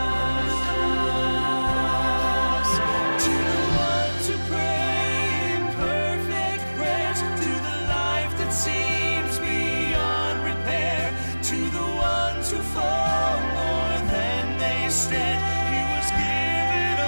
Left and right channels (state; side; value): inverted; both; correlation -1.00